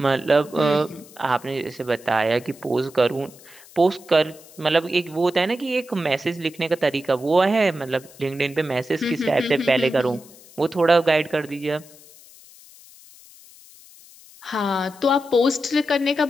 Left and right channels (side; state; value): left; noise; hiss, 22 dB below the sound